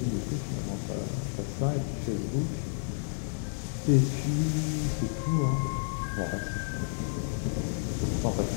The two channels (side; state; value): right; silent; 57 dB below the other